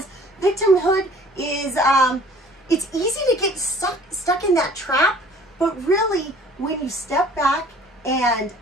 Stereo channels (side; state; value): both; normal; correlation 0.52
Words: victimhood is, it's easy to get stuck in that trap, but really when you step back and